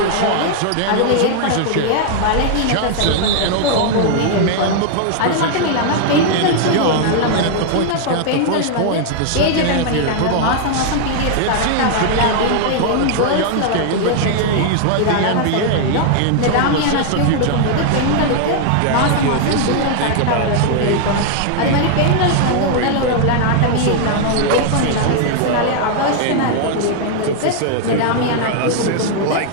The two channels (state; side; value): different; both; correlation 0.00